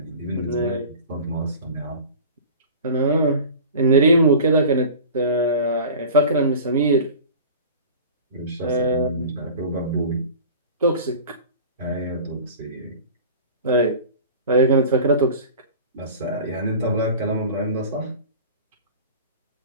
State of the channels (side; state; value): both; inverted; correlation -0.39